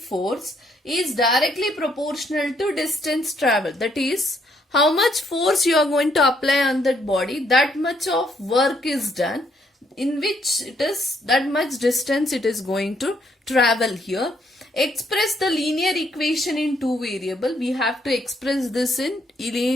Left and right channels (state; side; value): normal; both; correlation 0.71